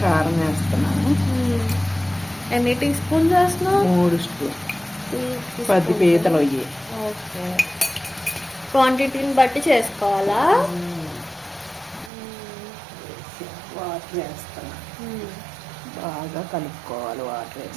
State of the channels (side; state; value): left; drops out; at 12.1 s